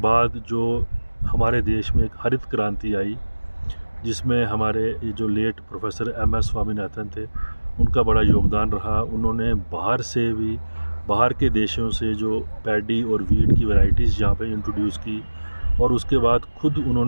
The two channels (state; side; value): inverted; both; correlation -1.00